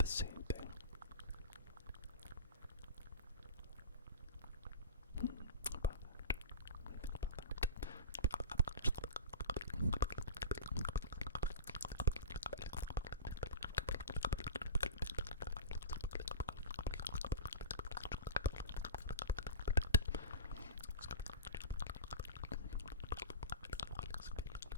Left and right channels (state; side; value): inverted; both; correlation -0.32